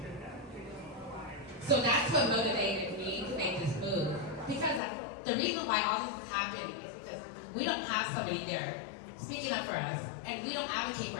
So that's what motivated me to make this move. Because the reason why all this has happened is because we don't have somebody there speaking up for us, and we don't advocate for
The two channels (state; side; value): drops out; right; at 4.8 s